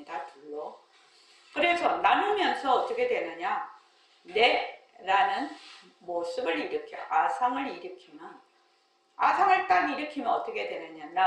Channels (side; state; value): both; identical; correlation 1.00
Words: 둘로. 그래서 나누면서 어떻게 되느냐, 내라는 모습을 일으켜 아상을 일으키면, 아상을 딱 일으키면 어떻게 되느냐,